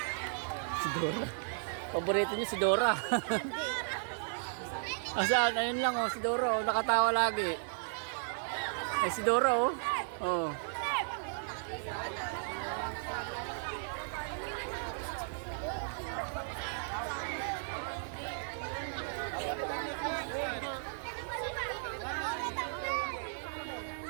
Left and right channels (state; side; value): silent; left; 54 dB below the other